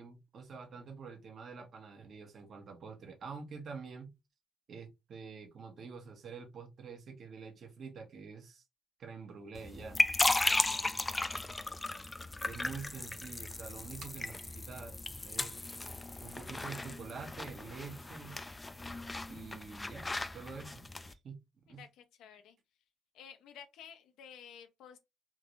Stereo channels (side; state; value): both; normal; correlation 0.94